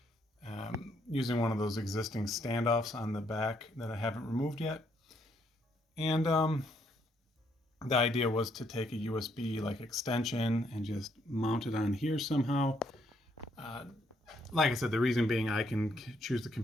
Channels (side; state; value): both; normal; correlation 0.72